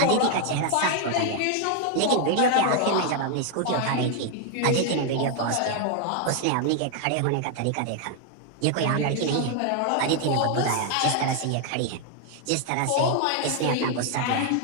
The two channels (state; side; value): different; both; correlation 0.00